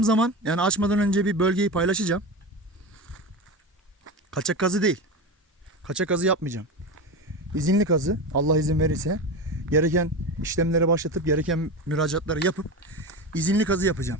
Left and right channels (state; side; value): normal; both; correlation 0.23